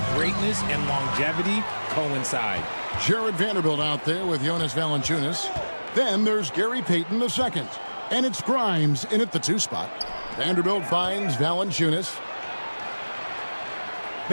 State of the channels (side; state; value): both; inverted; correlation -1.00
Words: greatness and longevity coincide. Jared Vanderbilt out there with Jonas Valanciunas. Then there's Gary Payton II. And it's Grimes in at the 2 spot. Vanderbilt finds Valanciunas.